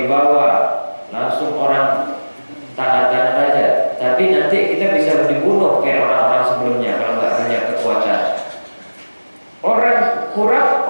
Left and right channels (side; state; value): both; inverted; correlation -1.00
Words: langsung orang taatan raja. Tapi nanti kita bisa dibunuh kayak orang-orang sebelumnya kalau nggak punya kekuatan. Orang kurap,